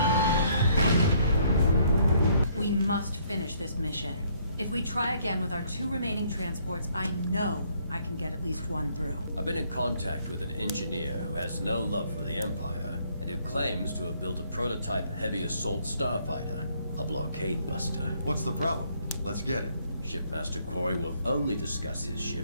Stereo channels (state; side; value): inverted; both; correlation -0.66